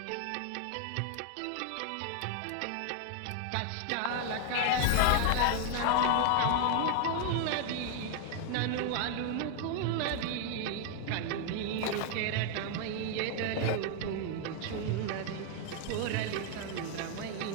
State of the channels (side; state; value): both; different; correlation 0.00